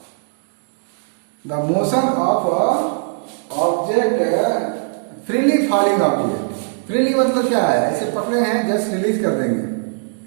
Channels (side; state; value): left; silent; 66 dB below the other